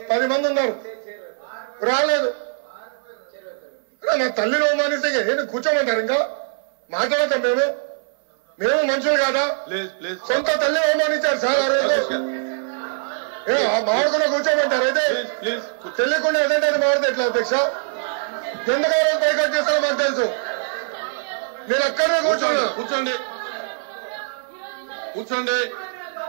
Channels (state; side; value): silent; left; 60 dB below the other